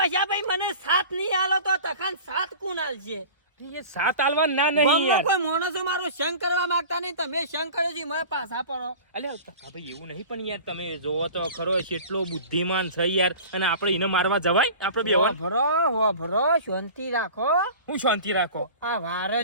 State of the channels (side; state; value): both; inverted; correlation -0.38